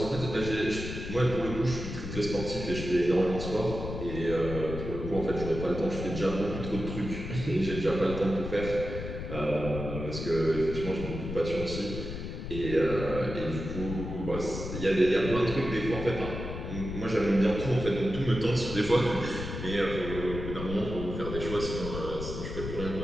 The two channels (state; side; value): noise; left; rumble, 7 dB below the sound